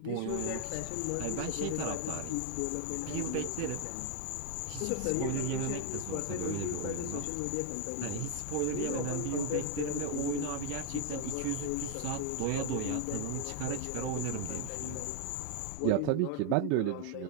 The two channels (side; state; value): both; different; correlation 0.00